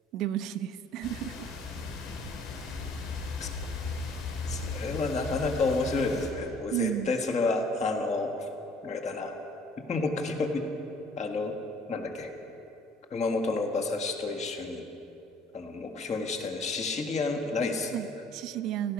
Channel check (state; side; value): normal; both; correlation 0.57